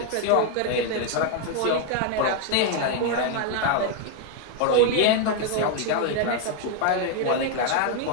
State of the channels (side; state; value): both; different; correlation 0.00